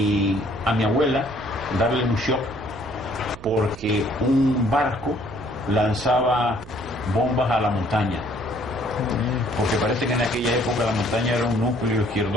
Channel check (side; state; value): right; noise; hum, 18 dB below the sound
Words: a mi abuela darle un shock porque un barco lanzaba bombas a la montaña, porque parece que en aquella época la montaña era un núcleo